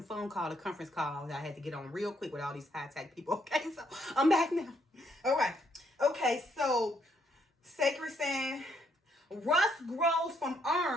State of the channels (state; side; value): normal; both; correlation 0.72